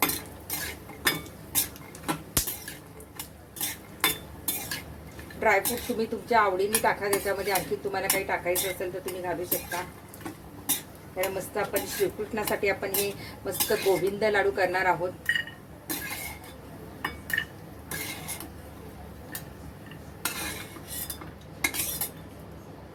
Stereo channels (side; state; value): both; identical; correlation 1.00